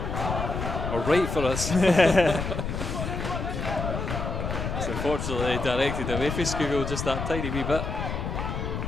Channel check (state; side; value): noise; left; rumble, 3 dB below the sound